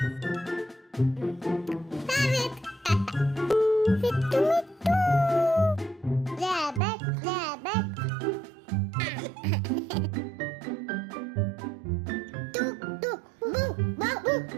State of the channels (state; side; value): drops out; left; at 6.8 s